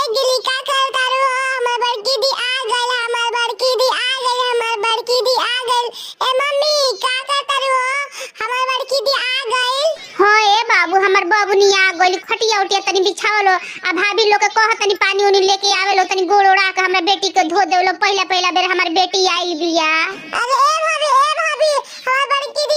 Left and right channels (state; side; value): identical; both; correlation 1.00